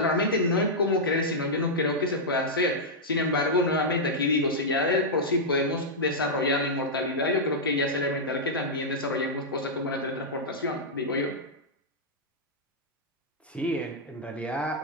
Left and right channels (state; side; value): normal; both; correlation -0.08